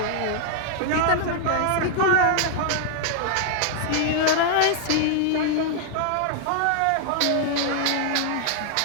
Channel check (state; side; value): different; both; correlation 0.00